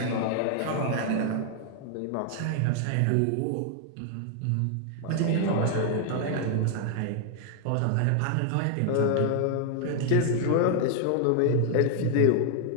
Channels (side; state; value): both; different; correlation 0.00